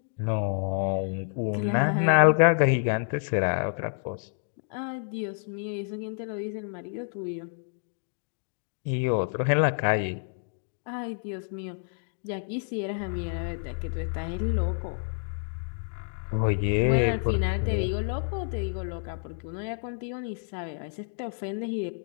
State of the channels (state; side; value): silent; right; digital silence